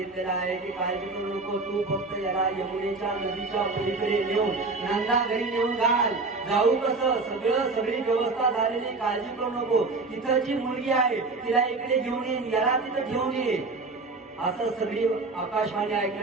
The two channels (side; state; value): left; quieter; 3.7 dB